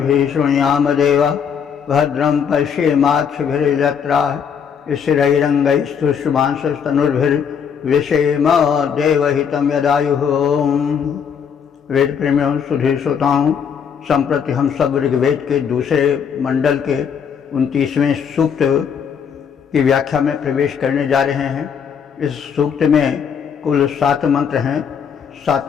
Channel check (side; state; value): right; quieter; 7.2 dB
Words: शृणुयाम देवा भद्रं पश्येमाक्षभिर्यजत्राः स्थिरैरङ्गैस्तुष्टुवांसस्तनुर्भिर्विषेम देवहितं यदायुः। वेद प्रेमियों सुधी श्रोताओं, संप्रति हम सब ऋग्वेद के दूसरे मंडल के 29वें सूक्त की व्याख्या में प्रवेश करने जा रहे हैं। इस सूक्त में कुल 7 मंत्र हैं।